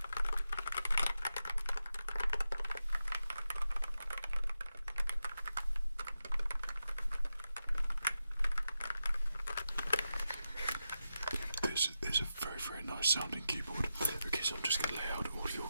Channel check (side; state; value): both; inverted; correlation -0.89